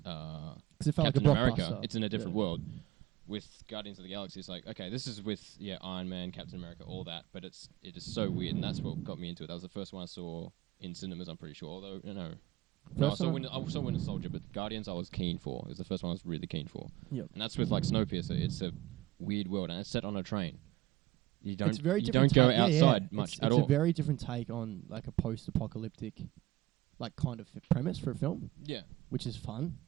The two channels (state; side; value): quieter; left; 16.5 dB